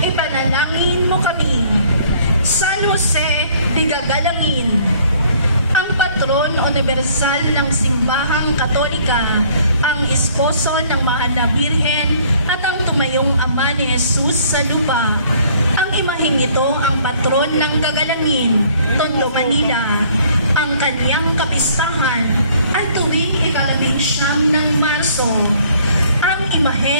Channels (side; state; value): both; inverted; correlation -0.59